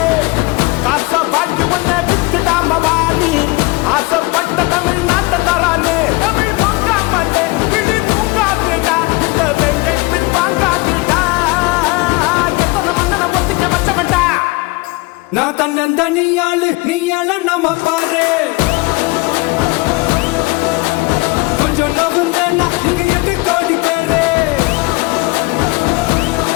காச வாங்கி ஒன்ன வித்துடாம வாணி ஆசைப்பட்ட தமிழ்நாட்டை தரானே. தமிழ் பொங்காமட்டே கிளி தூங்காதுடா இந்த வெங்கை பின் வாங்காதுடா. நான் தன்னந்தனியாளு நீயால நம்ம பாரு கொஞ்சம் நவுந்தேன்னா நீங்க 8 கோடி பேரு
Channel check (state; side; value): quieter; right; 24.3 dB